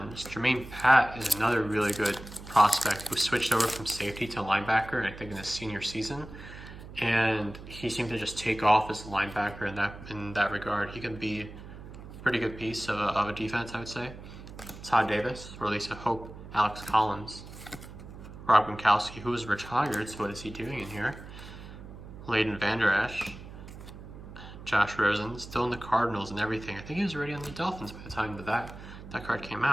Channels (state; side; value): noise; right; hum, 14 dB below the sound